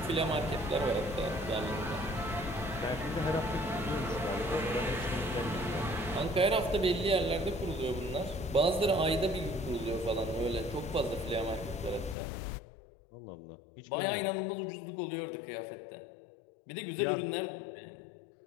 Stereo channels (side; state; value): right; drops out; at 12.2 s